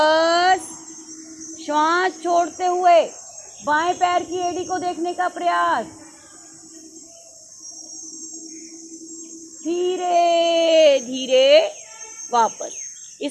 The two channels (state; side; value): identical; both; correlation 1.00